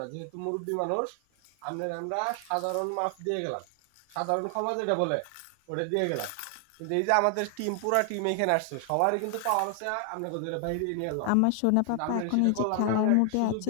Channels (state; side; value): different; both; correlation 0.00